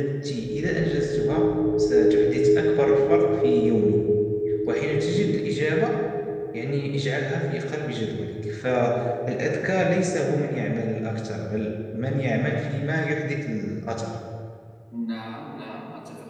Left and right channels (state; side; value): identical; both; correlation 1.00